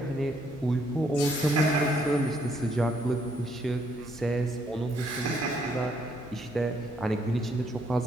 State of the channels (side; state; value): both; normal; correlation 0.70